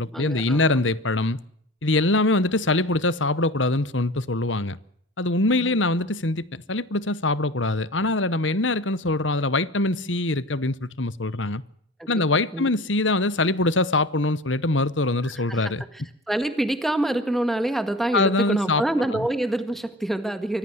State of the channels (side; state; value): both; normal; correlation 0.37